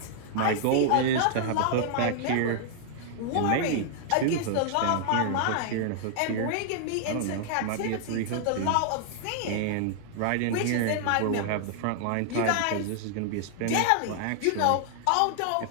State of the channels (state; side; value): different; both; correlation -0.01